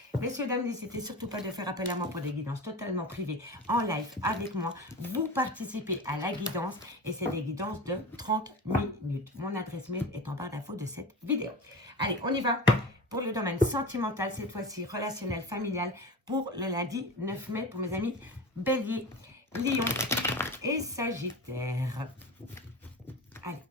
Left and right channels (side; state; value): both; normal; correlation 0.30